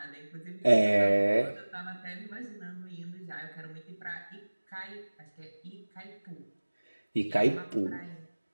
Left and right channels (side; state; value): both; inverted; correlation -1.00